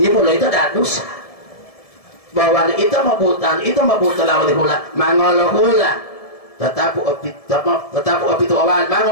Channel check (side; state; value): right; late; 1.7 ms